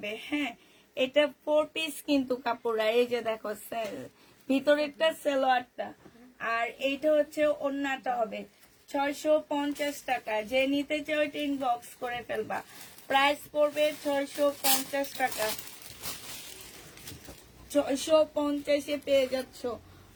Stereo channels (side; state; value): both; identical; correlation 1.00